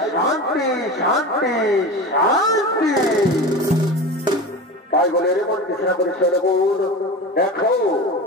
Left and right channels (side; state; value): both; normal; correlation 0.29